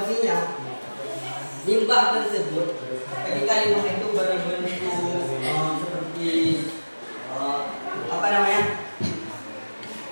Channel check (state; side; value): inverted; both; correlation -1.00